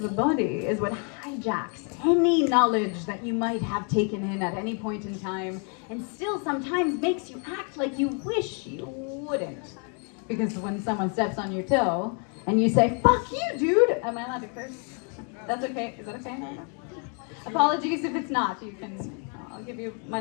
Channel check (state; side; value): quieter; right; 39.7 dB